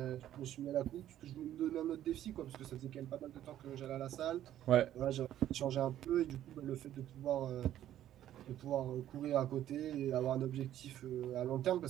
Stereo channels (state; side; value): quieter; left; 12.0 dB